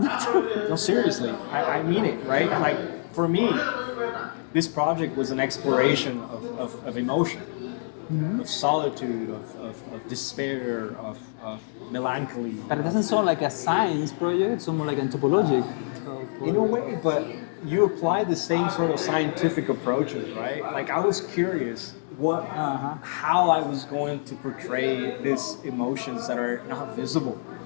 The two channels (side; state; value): right; silent; digital silence